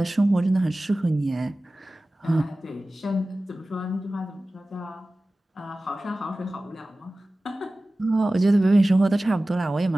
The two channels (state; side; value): normal; both; correlation 0.97